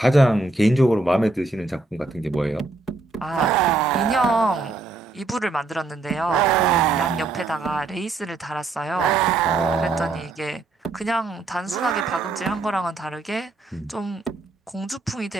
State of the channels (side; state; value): left; quieter; 3.4 dB